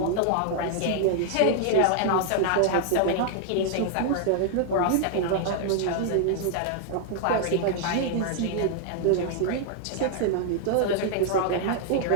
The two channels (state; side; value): different; both; correlation -0.01